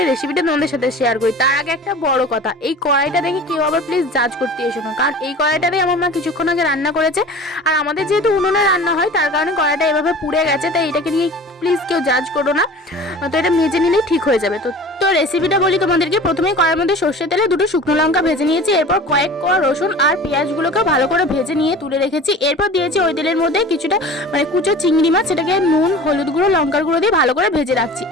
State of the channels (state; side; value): normal; both; correlation 0.40